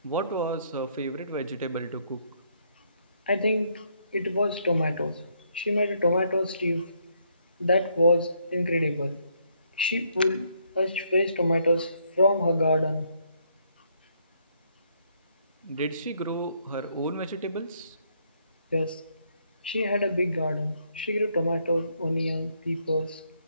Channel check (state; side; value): inverted; both; correlation -0.71